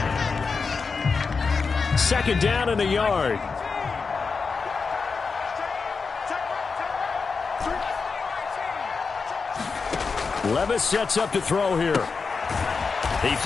Second down and a yard. Levis sets up to throw here. He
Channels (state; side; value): quieter; right; 4.9 dB